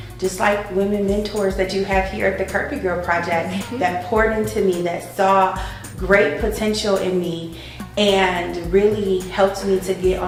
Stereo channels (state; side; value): identical; both; correlation 1.00